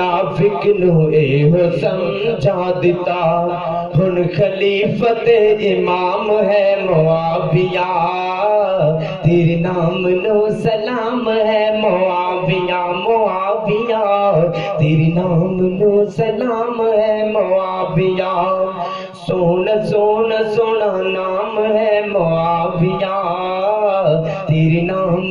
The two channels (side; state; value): both; identical; correlation 1.00